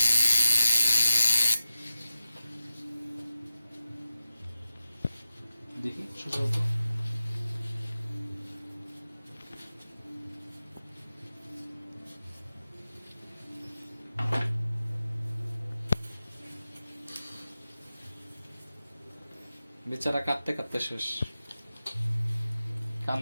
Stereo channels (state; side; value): inverted; both; correlation -0.93